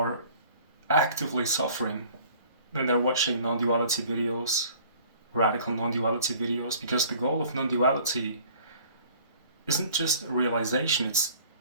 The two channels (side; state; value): both; inverted; correlation -0.51